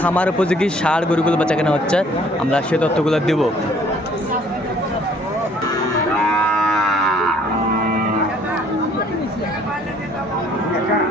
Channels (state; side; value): normal; both; correlation 0.59